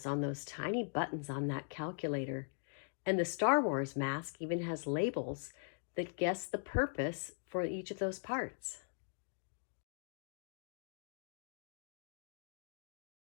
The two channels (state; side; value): silent; right; digital silence